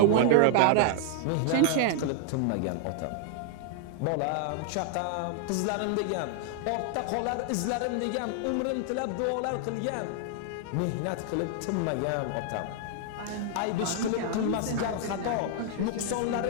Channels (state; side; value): different; both; correlation 0.00